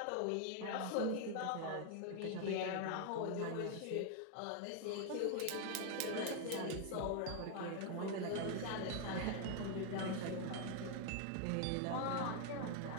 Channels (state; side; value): different; both; correlation 0.00